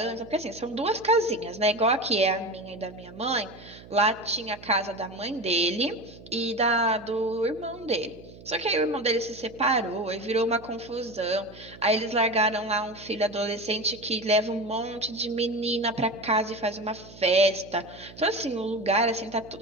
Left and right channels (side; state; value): right; noise; hum, 19 dB below the sound